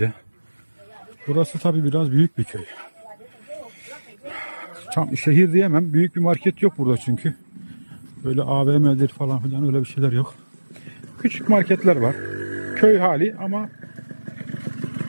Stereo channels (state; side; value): inverted; both; correlation -1.00